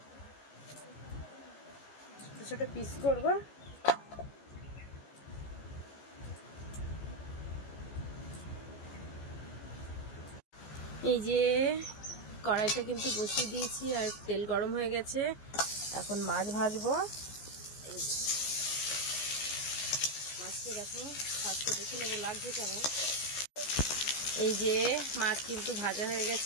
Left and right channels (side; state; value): right; late; 14 ms